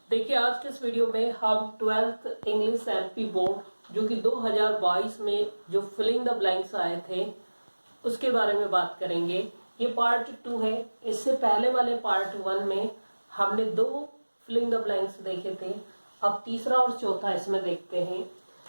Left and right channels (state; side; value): inverted; both; correlation -1.00